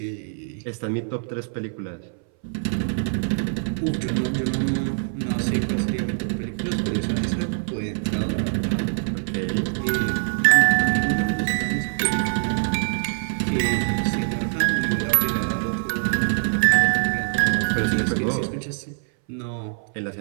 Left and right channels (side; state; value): left; silent; 61 dB below the other